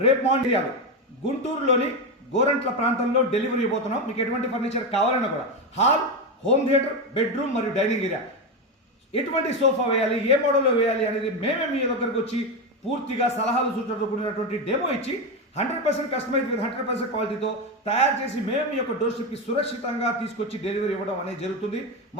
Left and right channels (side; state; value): both; normal; correlation 0.13